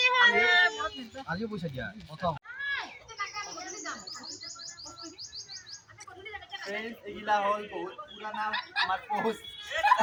হোলি আজিও পইচা দিয়া প্ৰথম এইগিলা হ'ল বহুত পুৰানা আমাৰ পোষ্ট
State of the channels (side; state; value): both; identical; correlation 1.00